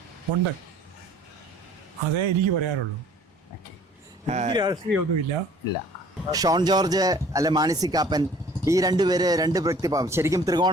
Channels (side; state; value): both; normal; correlation 0.52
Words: ഉണ്ട്. അതേ എനിക്ക് പറയാനുള്ളൂ. രാഷ്ട്രീയമൊന്നുമില്ല. ഇല്ല. ഷോൺ ജോർജ് അല്ലെ മാണി കാപ്പൻ, ഈ 2 പേര് 2 വ്യക്തിഭാവം. ശരിക്കും